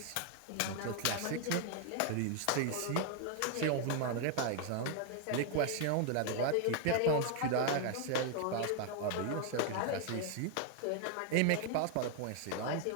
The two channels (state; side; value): different; both; correlation 0.00